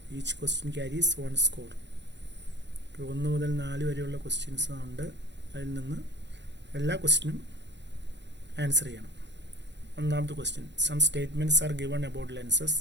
Each question carries 1 score. 1 മുതൽ 4 വരെയുള്ള questions ഉണ്ട്. അതിൽ നിന്ന് എല്ലാ ക്വസ്റ്റ്യനും ആൻസർ ചെയ്യണം. ഒന്നാമത്തെ question, some statements are given about lenses.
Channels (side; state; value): left; late; 0.52 ms